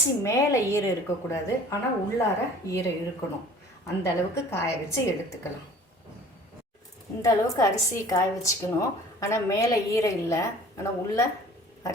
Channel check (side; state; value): both; normal; correlation 0.48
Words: மேலே ஈரம் இருக்கக்கூடாது, ஆனால் உள்ளார ஈரம் இருக்கணும். அந்த அளவுக்கு காய வச்சு எடுத்துக்கலாம். இந்த அளவுக்கு அரிசி காய வச்சுக்கணும். ஆனால் மேலே ஈரம் இல்லை, ஆனால் உள்ள